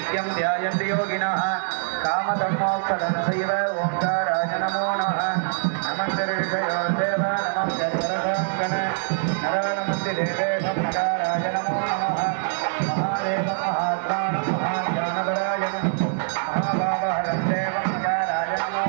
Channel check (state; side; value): silent; left; digital silence